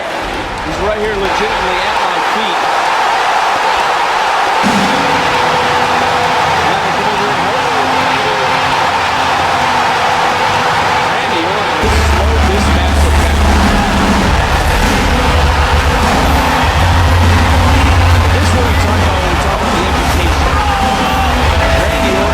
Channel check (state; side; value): identical; both; correlation 1.00